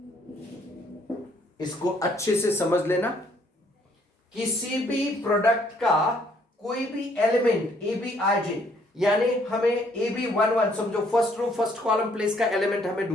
इसको अच्छे से समझ लेना. किसी भी product का कोई भी एलिमेंट ABIJ, यानी हमें AB11 समझो, first row first column place का एलिमेंट हमें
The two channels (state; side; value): normal; both; correlation 0.65